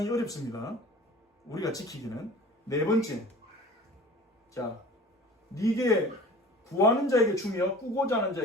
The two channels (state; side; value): normal; both; correlation 0.41